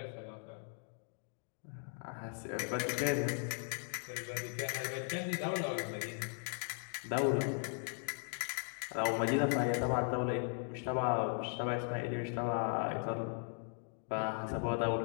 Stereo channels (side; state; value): right; silent; 52 dB below the other